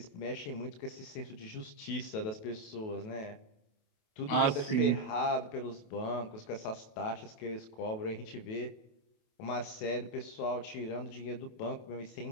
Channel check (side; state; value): right; late; 28 ms